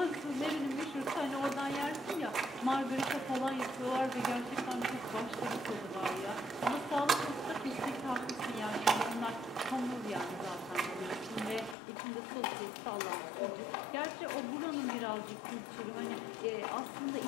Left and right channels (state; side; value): drops out; right; at 11.8 s